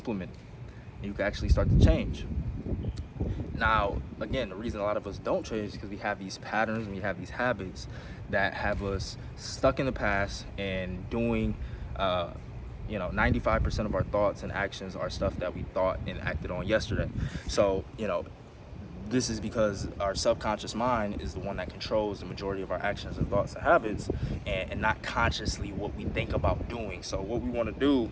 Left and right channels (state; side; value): identical; both; correlation 1.00